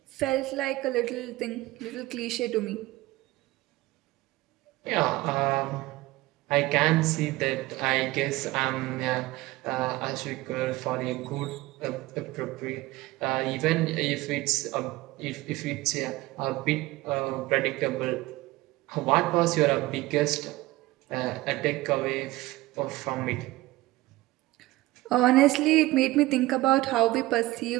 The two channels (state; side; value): quieter; left; 18.8 dB